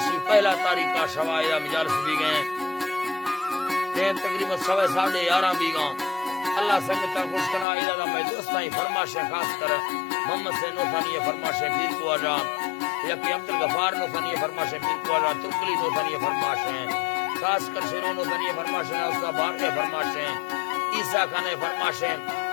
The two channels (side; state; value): right; drops out; at 7.7 s